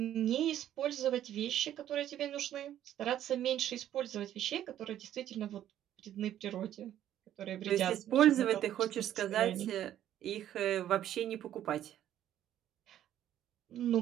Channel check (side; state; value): left; quieter; 11.5 dB